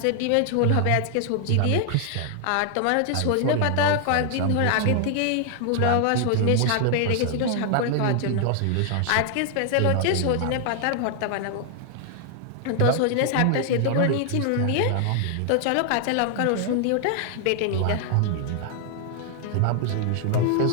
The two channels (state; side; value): different; both; correlation 0.00